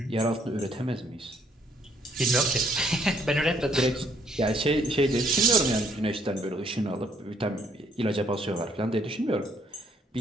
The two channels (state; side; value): normal; both; correlation 0.67